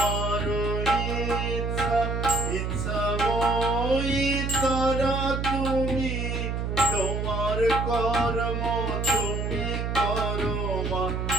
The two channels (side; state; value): right; noise; hum, 2 dB below the sound